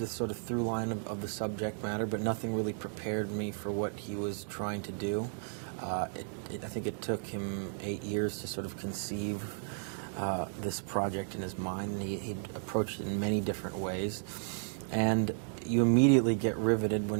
sort of through line of the subject matter, but nothing really prepared me for what he was trying to do. I think it took him 8 years to sort of conceive this project in his mind, and he approached it in many different ways. And you immediately get riveted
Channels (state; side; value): silent; left; digital silence